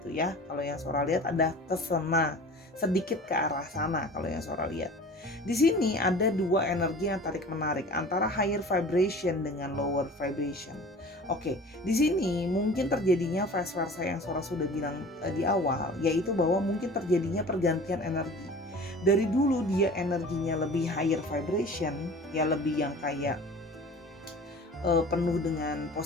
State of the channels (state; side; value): normal; both; correlation 0.41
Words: ya. Kalau yang Sora lihat ada kesana, sedikit ke arah sana kalau yang Sora lihat. Di sini ada dua energi yang tarik menarik antara higher vibration dengan lower vibration. Oke, di sini mungkin terjadinya vice versa yang Sora sudah bilang di awal, yaitu bahwa mungkin terjadinya pergantian energi. Dari dulu dia energinya lebih higher vibration, ya lebih yang kayak penuh dengan